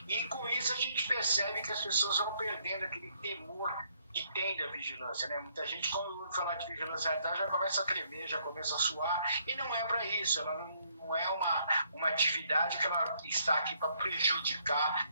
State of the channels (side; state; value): both; inverted; correlation -0.69